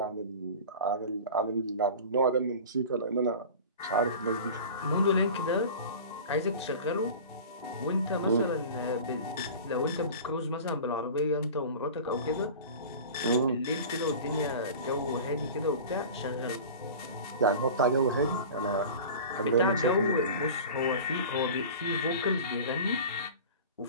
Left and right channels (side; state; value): both; inverted; correlation -0.36